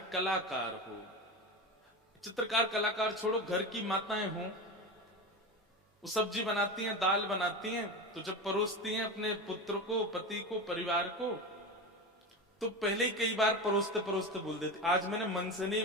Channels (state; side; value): normal; both; correlation 0.23